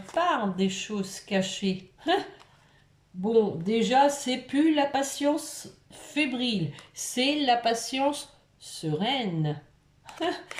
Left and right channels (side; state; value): both; identical; correlation 1.00